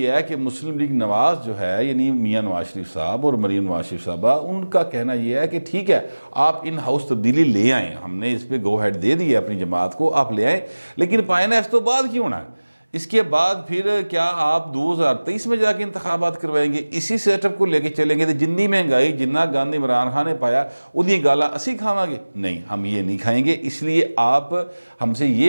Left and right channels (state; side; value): inverted; both; correlation -1.00